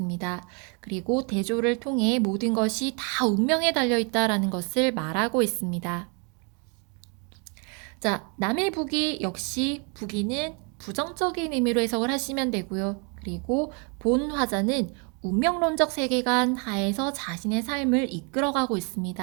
그리고 대조를 통해 모든 것이 다 운명에 달려 있다라는 것을 말하고 있습니다. 자, 남의 부귀 역시 부귀는 부정적인 의미로 해석을 하시면 되고요. 그리고 본 화자는 운명론적 세계관 하에서 자신의 삶을 이끌어가고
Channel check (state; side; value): quieter; left; 35.4 dB